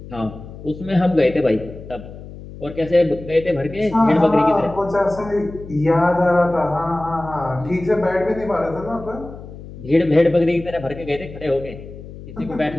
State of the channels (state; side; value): noise; left; hum, 15 dB below the sound